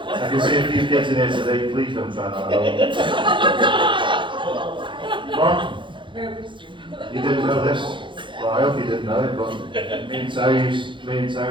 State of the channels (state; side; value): late; left; 0.24 ms